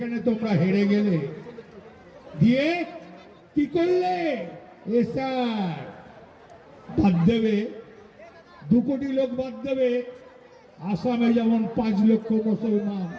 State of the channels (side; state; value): both; identical; correlation 1.00